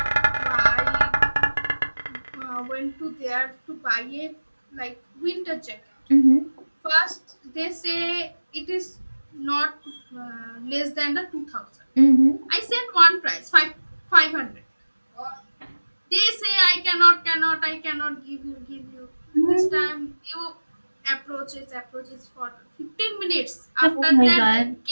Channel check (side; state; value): both; inverted; correlation -1.00